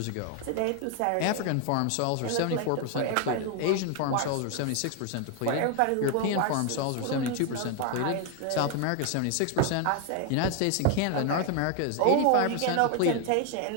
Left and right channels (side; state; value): both; different; correlation 0.01